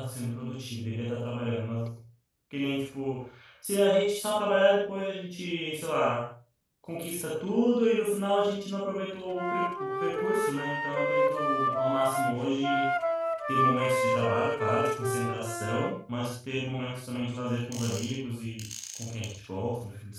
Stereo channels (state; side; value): identical; both; correlation 1.00